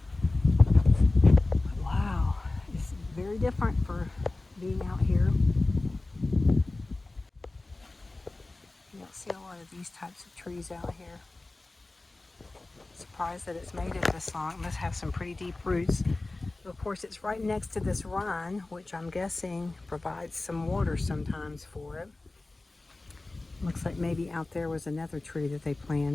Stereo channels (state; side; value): quieter; right; 3.1 dB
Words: Wow, it's very different for being out here. You don't see a lot of these types of trees out here. Surprised that it's made it this long. It must have some pretty deep roots. Of course, it's right next to this run, which I'm guessing provides some water sometimes for it. Looks like maybe out there was another tree that they